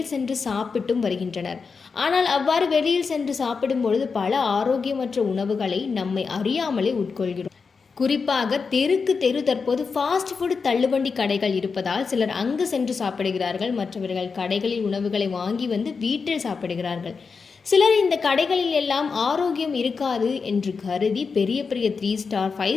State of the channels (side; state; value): right; quieter; 5.1 dB